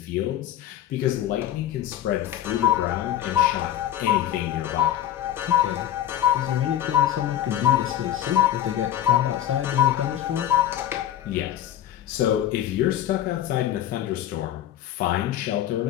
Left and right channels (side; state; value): right; quieter; 11.7 dB